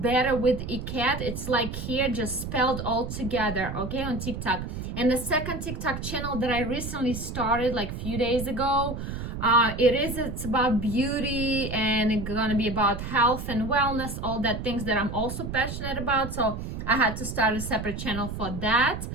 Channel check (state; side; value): noise; right; rumble, 6 dB below the sound